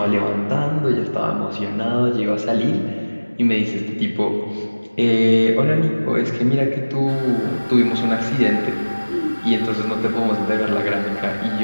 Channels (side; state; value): both; inverted; correlation -1.00